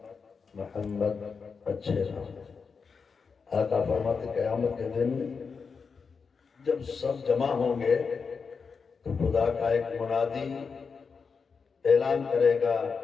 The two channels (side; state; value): right; quieter; 5.4 dB